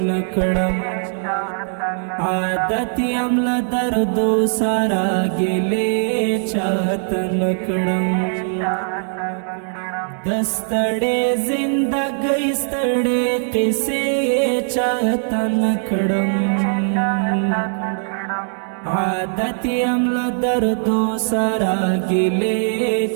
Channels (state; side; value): silent; left; 66 dB below the other